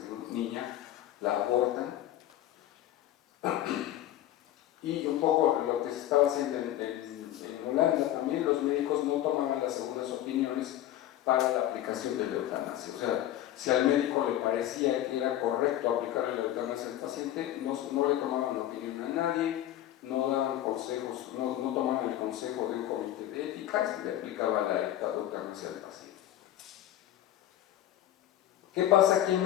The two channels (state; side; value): quieter; right; 12.8 dB